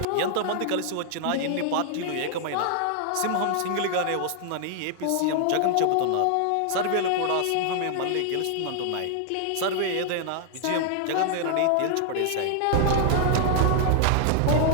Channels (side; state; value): both; different; correlation 0.00